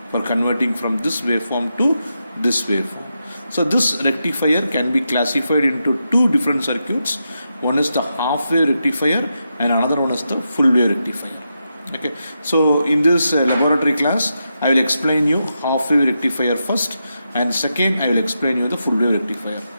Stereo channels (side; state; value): both; inverted; correlation -0.86